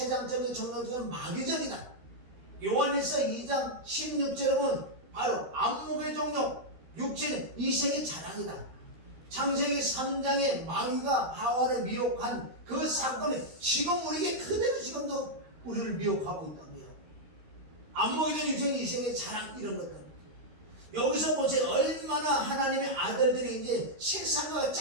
정욕적인 마귀적이다. 요한일서 2장 16절에 보면 바로 안목의 정욕, 육체는 이생의 자랑이다. 창세기 3장에 마귀가 하와를 미혹한 그 사건이 지금 우리에게 그대로 지금도 우리를 미혹하고 있다고요. 안목의 정욕, 육체는 이생의 자랑, 이런 것들. 여기서 보세요. 얼마나 하나님의 아들들이 이제 세상과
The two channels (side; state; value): left; late; 13 ms